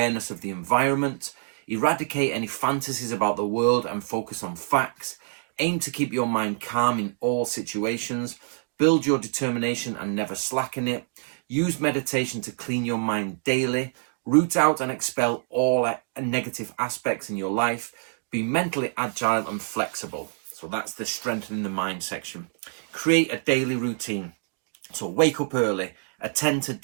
of the environment. Eradicate any fantasies about the world and focus on facts. Aim to keep your mind calm in all situations. Build your determination and never slacken it. Use meditation to clean your mind daily. Root out and expel all negative aspects in your life. Be mentally agile and flexible. So that's the strengthening the mind section. Create a daily routine. So wake up early. Attend to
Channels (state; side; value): silent; left; digital silence